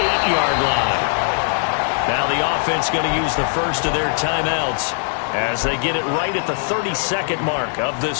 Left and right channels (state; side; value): silent; right; digital silence